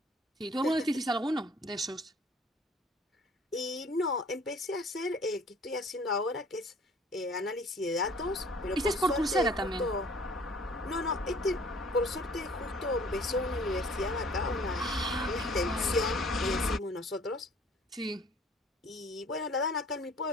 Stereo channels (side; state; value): both; normal; correlation 0.53